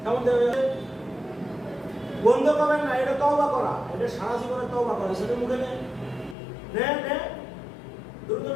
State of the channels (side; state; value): right; drops out; at 6.4 s